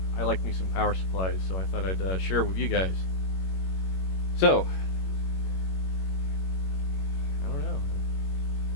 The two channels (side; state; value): right; late; 21 ms